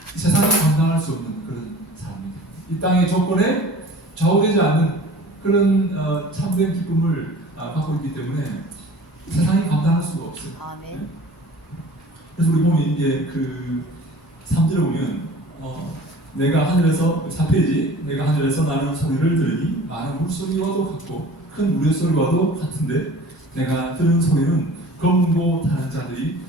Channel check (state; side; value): normal; both; correlation 0.44